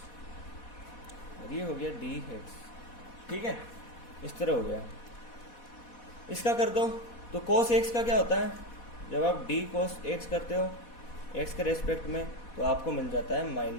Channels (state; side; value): late; right; 4.1 ms